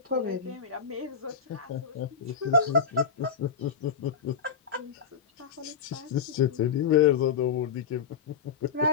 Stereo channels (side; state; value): right; quieter; 6.2 dB